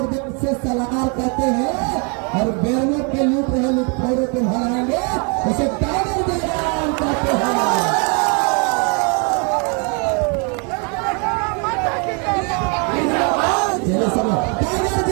से सलाहकार कहते हैं और बेरमो के लूट रहे लुटखोरों को हराएंगे उसे टाइगर जयराम कहते हैं। चलिए सब टाइगर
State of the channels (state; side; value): quieter; left; 34.8 dB